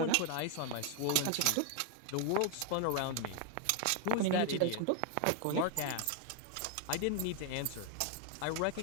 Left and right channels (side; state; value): both; different; correlation 0.00